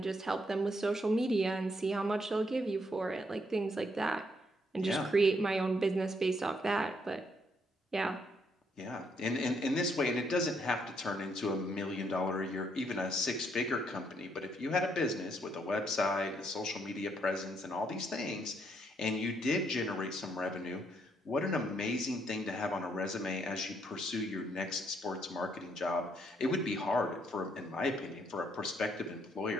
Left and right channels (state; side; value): normal; both; correlation 0.72